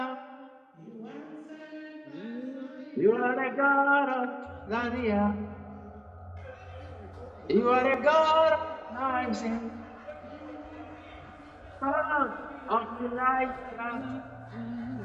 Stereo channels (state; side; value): identical; both; correlation 1.00